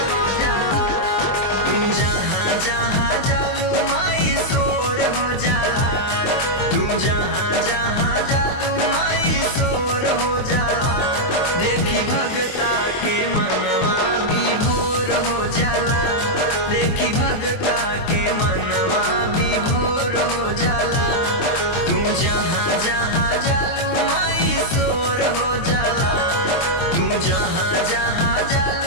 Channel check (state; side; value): late; right; 23 ms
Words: तुम जहाँ जहाँ जालू माई शोर हो जाला, तुम जहाँ जहाँ जालू माई शोर हो जाला। देखी भगता के मनवा विभोर हो जाला, देखी भगता के मनवा विभोर हो जाला। तू जहाँ जहाँ जालू माई शोर हो जाला, तू जहाँ जहाँ